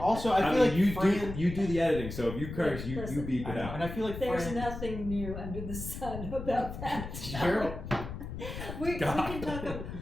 I feel like you do the editing. So if you curse, you beep it out. And I feel like there's nothing new under the sun about that. Sure. we can talk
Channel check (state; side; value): noise; left; rumble, 8 dB below the sound